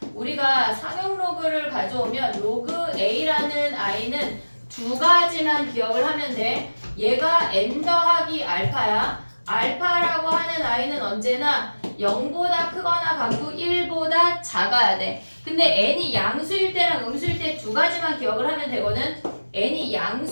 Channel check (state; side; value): inverted; both; correlation -1.00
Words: 우리가 상용 로그를 가져오면 로그 a라는 i는 두 가지만 기억을 하면 돼. 얘가 n 더하기 알파야. 알파라고 하는 i는 언제나 0보다 크거나 같고 1보다 작아야 돼. 근데 n이 양수일 때랑 음수일 때 두 가지만 기억을 하면 되거든. n이